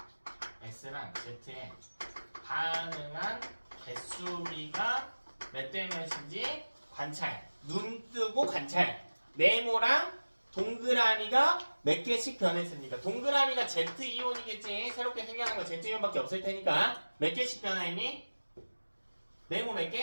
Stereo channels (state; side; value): inverted; both; correlation -1.00